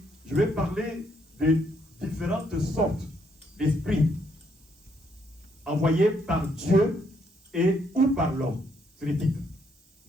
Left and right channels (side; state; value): both; normal; correlation 0.72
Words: je vais parler des différentes sortes d'esprits envoyés par Dieu et ou par l'homme. C'est le titre.